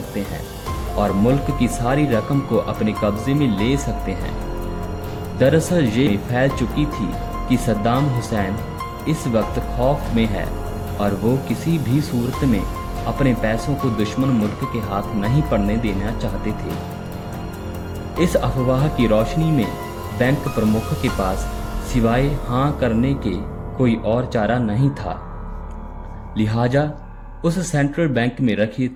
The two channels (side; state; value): both; identical; correlation 1.00